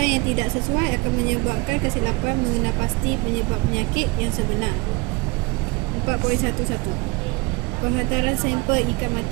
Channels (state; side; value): quieter; left; 26.3 dB